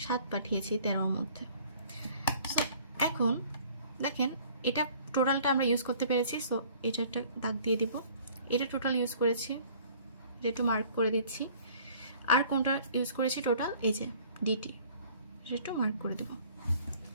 7 পাঠিয়েছি 13-র মধ্যে। সো এখন দেখেন এটা টোটালটা আমরা ইউজ করতে পেরেছি। সো এটা একটা দাগ দিয়ে দিব। এটা টোটাল ইউজ করেছি, এটা একটু মার্ক করে দিচ্ছি। আর কোনটা ইউজ করেছি টোটাল? এই যে ডিটি, এটা একটু মার্ক করে দেব।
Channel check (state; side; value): inverted; both; correlation -0.53